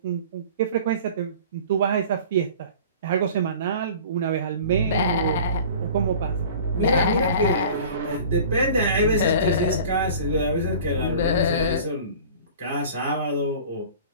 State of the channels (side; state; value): both; inverted; correlation -0.43